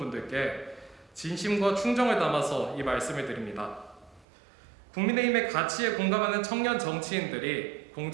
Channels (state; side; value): drops out; left; at 4.2 s